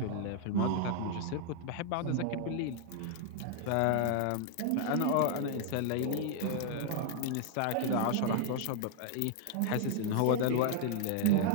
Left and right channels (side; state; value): both; different; correlation 0.00